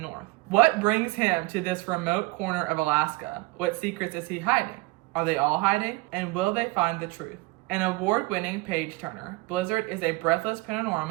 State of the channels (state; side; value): quieter; left; 22.7 dB